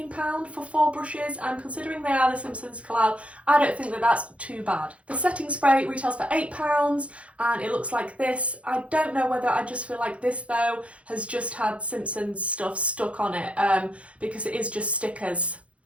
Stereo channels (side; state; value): left; late; 0.063 ms